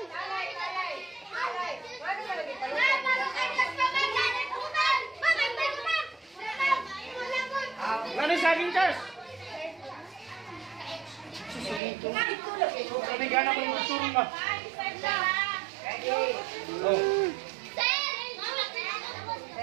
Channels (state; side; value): drops out; left; at 11.8 s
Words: Ano saging, Charles? Sabi gana ko yung turun ba? Oh.